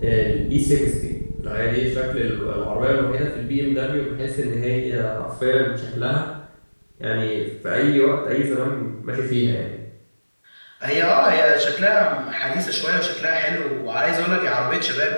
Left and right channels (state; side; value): inverted; both; correlation -1.00